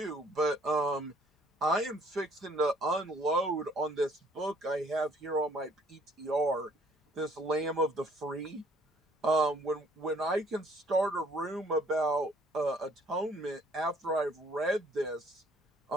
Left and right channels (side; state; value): both; normal; correlation 0.61